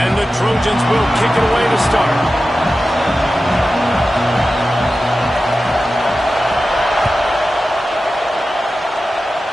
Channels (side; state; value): both; normal; correlation 0.93